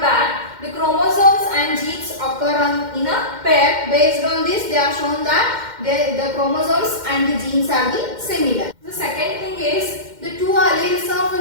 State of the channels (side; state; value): left; late; 2.1 ms